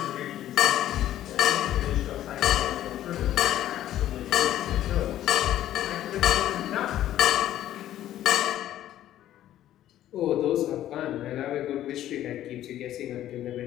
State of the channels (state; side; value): quieter; right; 12.6 dB